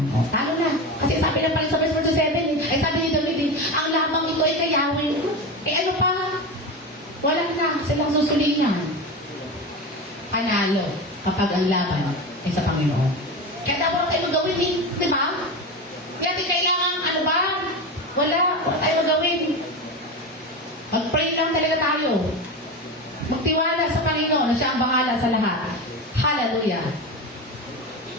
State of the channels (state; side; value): normal; both; correlation 0.22